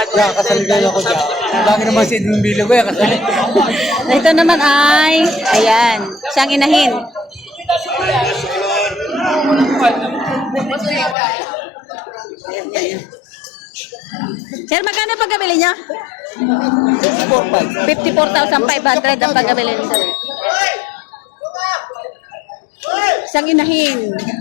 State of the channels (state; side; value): drops out; right; at 11.2 s